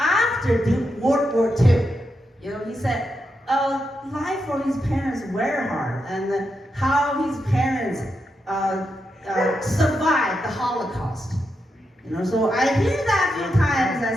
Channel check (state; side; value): normal; both; correlation 0.85